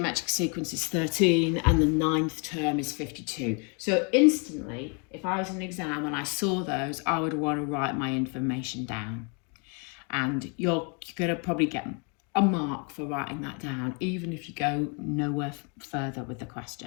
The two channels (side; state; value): right; quieter; 35.8 dB